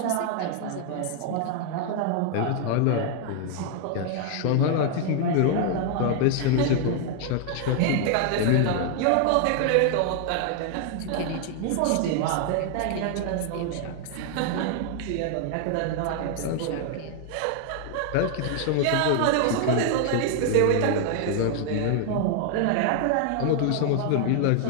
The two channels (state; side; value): different; both; correlation 0.00